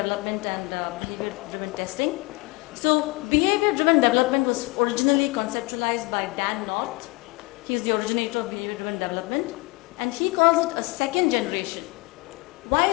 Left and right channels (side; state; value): right; quieter; 25.0 dB